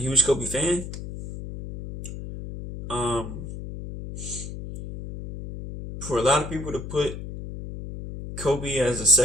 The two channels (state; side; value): noise; left; hum, 9 dB below the sound